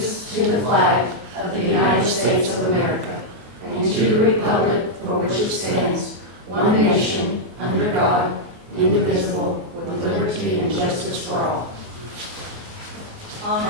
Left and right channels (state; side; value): late; left; 24 ms